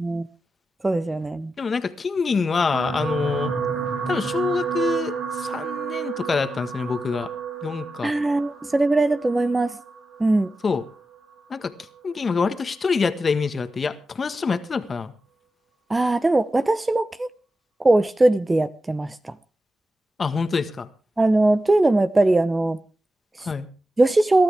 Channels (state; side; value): normal; both; correlation 0.91